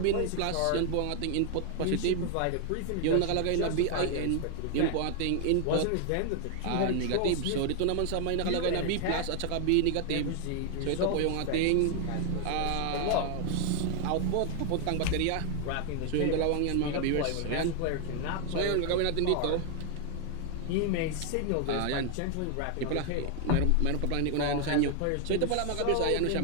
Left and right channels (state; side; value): different; both; correlation 0.00